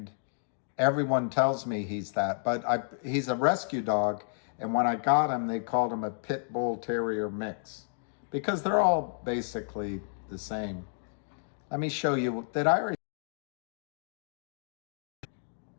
everyone tells me he's that. But he's a rescue dog. And when I got him, they called him a Pit Bull Terrier mix. Because they're all basically the same. Let me show you. Did I already?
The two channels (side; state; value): right; silent; digital silence